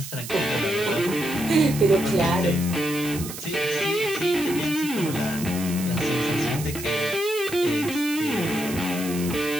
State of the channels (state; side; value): noise; right; hiss, 10 dB below the sound